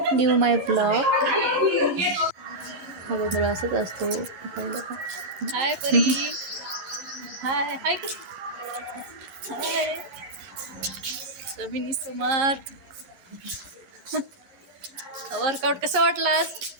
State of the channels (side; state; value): left; late; 11 ms